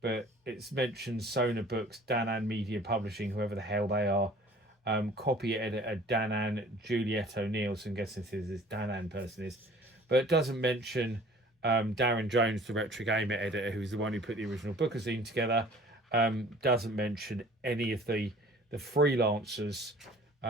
it's mentioned Sona Books, Danan Media Publishing, whoever the hell they are, copy editor Danan Juliet O'Neill, so I'm guessing this Danan person is, but it doesn't mention Darren Jones, the Retro Gamer editor, who's the one who put the original bookazine together. Doesn't mention any of the freelancers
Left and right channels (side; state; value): both; normal; correlation 0.50